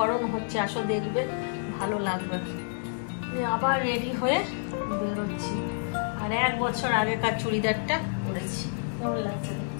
হচ্ছে, আসো দেখবে ভালো লাগবে। আবার রেডি হয়ে বেরোচ্ছি। আর 1 বছর আগেকার চুড়িদারটা পরেছি, কেমন লাগছে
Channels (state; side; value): silent; right; digital silence